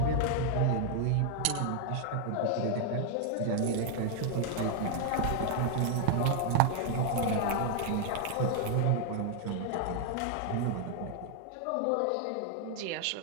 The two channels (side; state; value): both; different; correlation 0.00